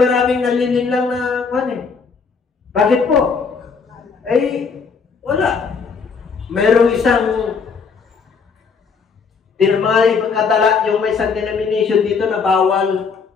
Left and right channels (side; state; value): right; quieter; 5.4 dB